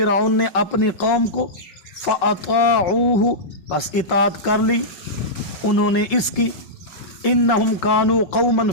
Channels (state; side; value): late; right; 5.5 ms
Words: نے اپنی قوم کو، فاطاعوہ، پس اطاعت کر لی انہوں نے اس کی، انہم کانوا قوما